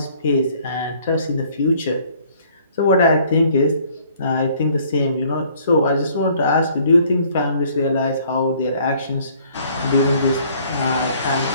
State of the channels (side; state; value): both; inverted; correlation -0.59